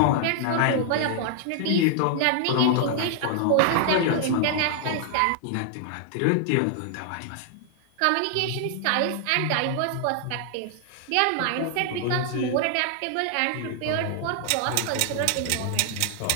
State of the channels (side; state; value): both; different; correlation 0.00